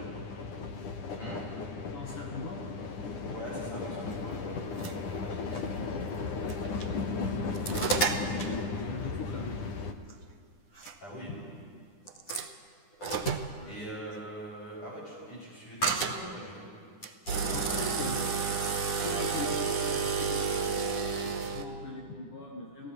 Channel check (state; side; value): late; right; 9.9 ms